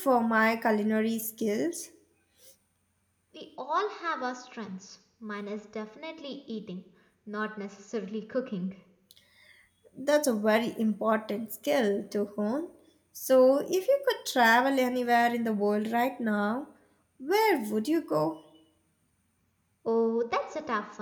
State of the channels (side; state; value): both; identical; correlation 1.00